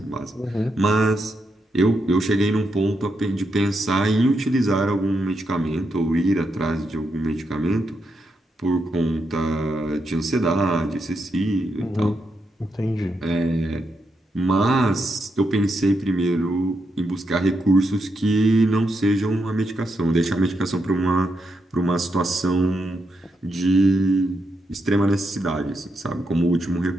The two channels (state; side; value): normal; both; correlation 0.83